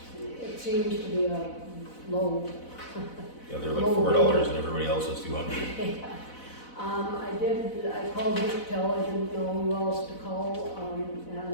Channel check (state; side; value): late; right; 4.0 ms